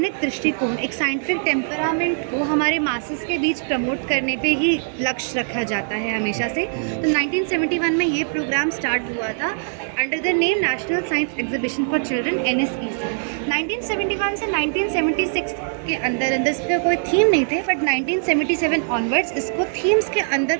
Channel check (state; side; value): silent; left; digital silence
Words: दृष्टिकोण, एक साइंटिफिक टेम्परामेंट को हमारे मासेस के बीच प्रमोट करने पे ही लक्ष्य रखा जाता है हमेशा से। तो 1971 में ये प्रोग्राम स्टार्ट हुआ था under the name national science exhibition for children NSEC। 1971 से 1976 के अंदर इसका कोई थीम नहीं थे, बट 1977 ऑनवर्ड्स इसको थीम्स के अंदर